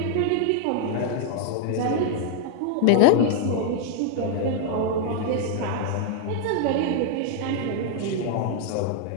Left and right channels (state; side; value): different; both; correlation 0.00